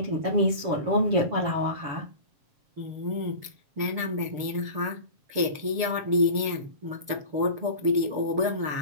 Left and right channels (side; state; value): left; late; 7.3 ms